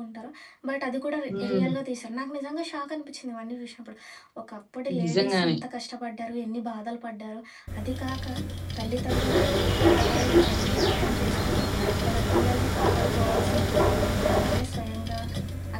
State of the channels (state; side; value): identical; both; correlation 1.00